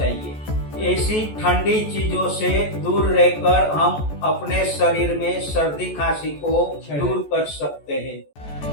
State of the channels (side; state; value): right; late; 14 ms